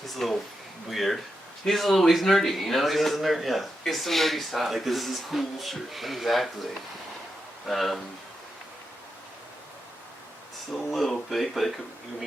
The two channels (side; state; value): both; normal; correlation 0.87